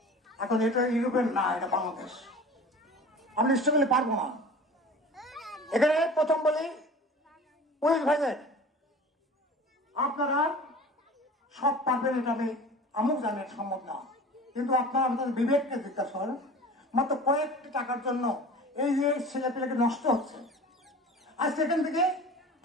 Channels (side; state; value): both; normal; correlation 0.40